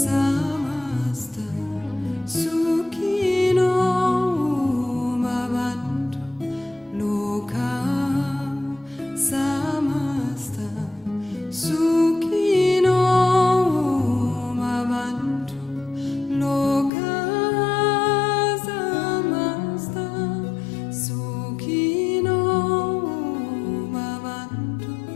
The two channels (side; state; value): right; drops out; at 16.9 s